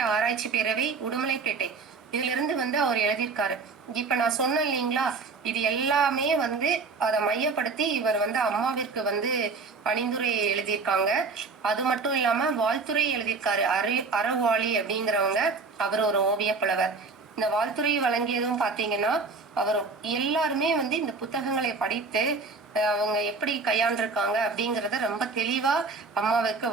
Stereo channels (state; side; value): quieter; left; 4.3 dB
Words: ஆராய்ச்சி பேரவை உடுமலைப்பேட்டை இதுல இருந்து வந்து அவர் எழுதியிருக்காரு. இப்ப நான் சொன்னேன் இல்லைங்களா, இது எல்லாமே வந்து அதை மையப்படுத்தி இவர் வந்து அம்மாவிற்கு வந்து பணிந்துரை எழுதியிருக்காங்க. அது மட்டும் இல்லாம வாழ்த்துறை எழுதியிருக்காரு. அறவாளி அப்படிங்கிறவங்க, அவர் ஒரு ஓவிய புலவர். இந்த வாழ்த்துறை வழங்கியதும் பாத்தீங்கன்னா அவர் எல்லாருமே வந்து இந்த புத்தகங்களை படித்து அவங்க எப்படி கையாண்டிருக்காங்க அப்படிங்கறத ரொம்ப தெளிவா அம்மாவுக்கு